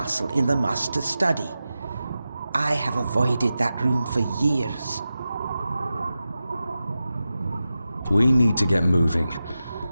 in the Master Study. I have avoided that room for years. We need to get moving.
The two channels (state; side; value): inverted; both; correlation -0.93